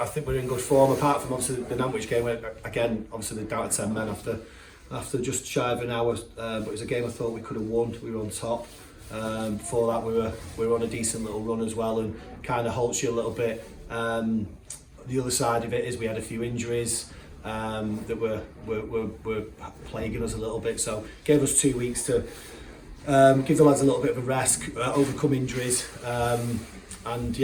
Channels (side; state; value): both; identical; correlation 1.00